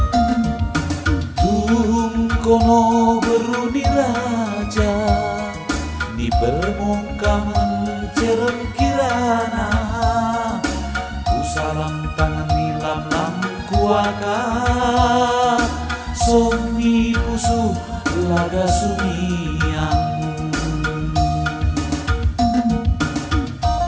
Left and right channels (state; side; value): identical; both; correlation 1.00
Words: Tuhun kono beruni raja, di permukaan cerem kirana. Ku salam tangan nilam lam kuaka, somi pusu laga sumiang.